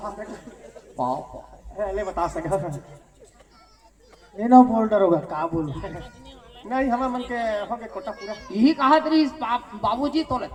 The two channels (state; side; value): identical; both; correlation 1.00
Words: पापा ले बता सका ये ना बोल डरोगा का बोलू नहीं हमारे मन के हो गए कोटा पूरा यही कहा तरी बाबूजी तो